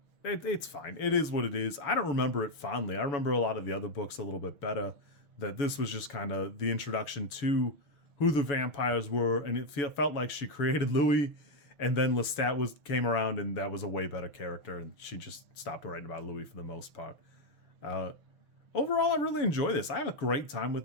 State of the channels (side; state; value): right; late; 7.1 ms